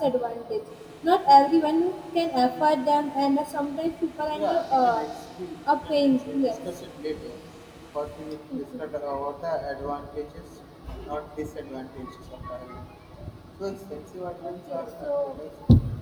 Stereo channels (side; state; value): both; identical; correlation 1.00